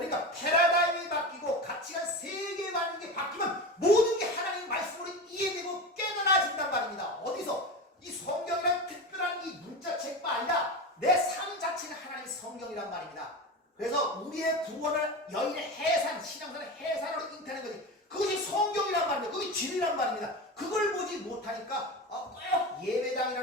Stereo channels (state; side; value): normal; both; correlation 0.25